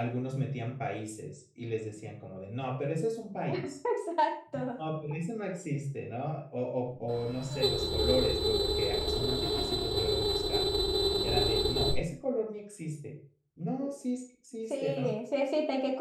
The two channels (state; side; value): identical; both; correlation 1.00